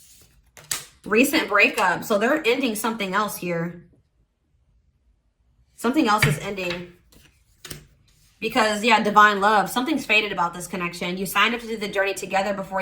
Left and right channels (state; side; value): identical; both; correlation 1.00